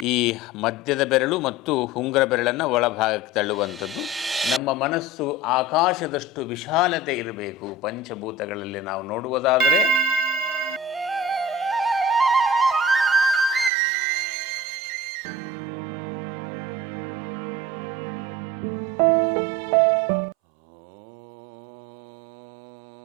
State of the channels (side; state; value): left; drops out; at 13.7 s